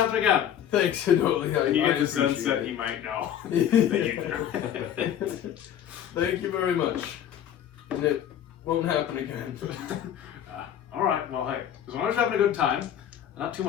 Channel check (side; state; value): right; quieter; 10.1 dB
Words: again. Thanks, Hidoli. And you I get the sense appreciate that it. he might know that you threw. Thank you very much. And it won't happen again. All right. Well, hey, as long as you're having a good time, not too